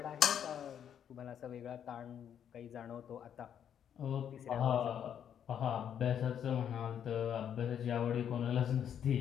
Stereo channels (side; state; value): right; quieter; 9.0 dB